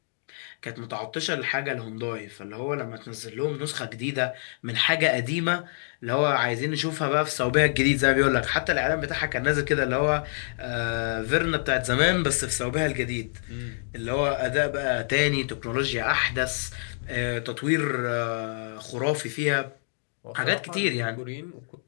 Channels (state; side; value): silent; right; digital silence